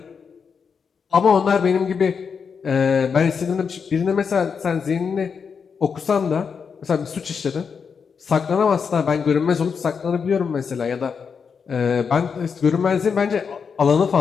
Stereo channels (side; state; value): right; quieter; 6.1 dB